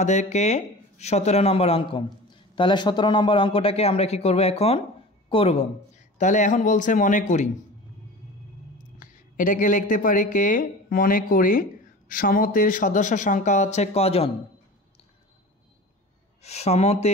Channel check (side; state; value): both; normal; correlation 0.36